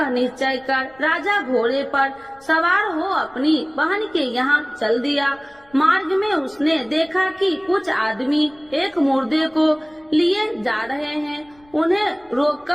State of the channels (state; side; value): noise; left; rumble, 30 dB below the sound